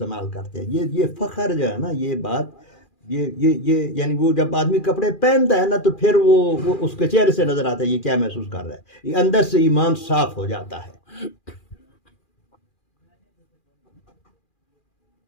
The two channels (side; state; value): right; late; 2.4 ms